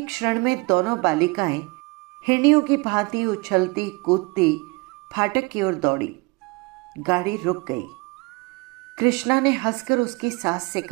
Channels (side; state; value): left; quieter; 26.4 dB